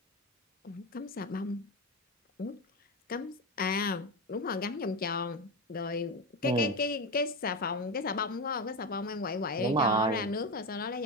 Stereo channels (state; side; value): normal; both; correlation 0.16